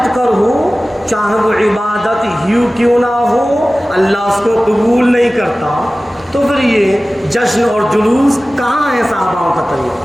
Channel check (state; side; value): normal; both; correlation 0.97